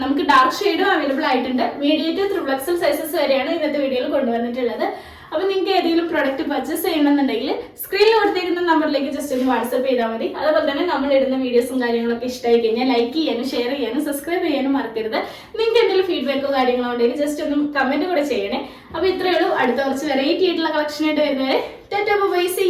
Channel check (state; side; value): identical; both; correlation 1.00